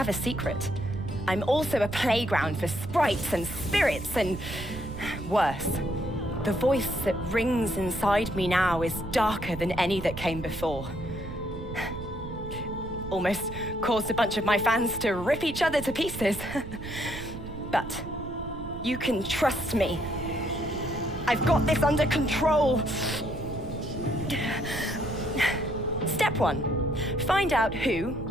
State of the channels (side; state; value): right; noise; rumble, 10 dB below the sound